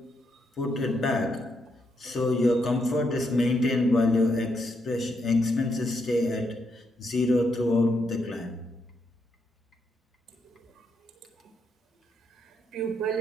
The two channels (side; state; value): both; normal; correlation 0.79